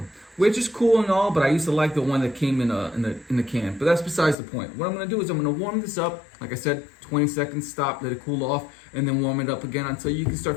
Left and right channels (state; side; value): drops out; right; at 4.4 s